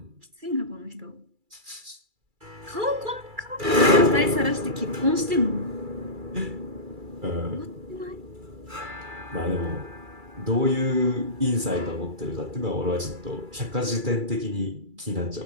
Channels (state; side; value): late; left; 2.3 ms